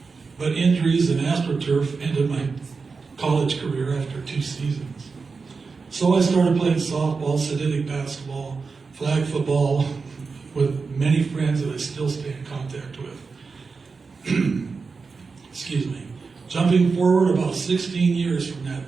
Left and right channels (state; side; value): quieter; left; 4.6 dB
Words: but injuries and AstroTurf ended my college career after 2 seasons. So I started playing softball, synthetic basketball, flag football with many friends that I still stay in contact with. Excuse me. Jumping forward about 16 years from that